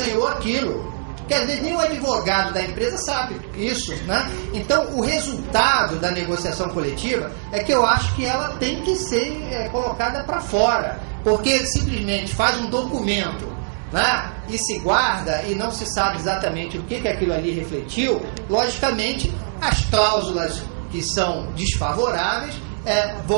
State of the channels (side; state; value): left; silent; digital silence